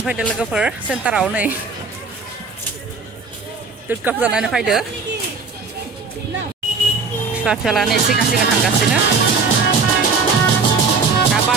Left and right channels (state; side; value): quieter; left; 4.5 dB